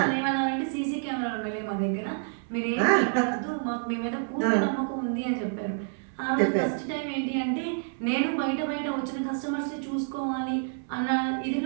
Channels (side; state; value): left; silent; 59 dB below the other